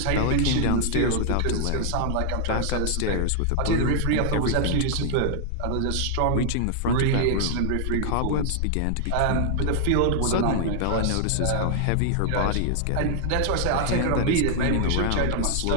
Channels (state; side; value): different; both; correlation -0.01